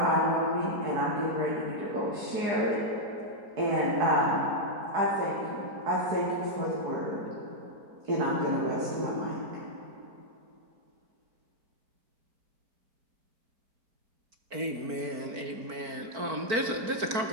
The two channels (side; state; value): left; late; 4.5 ms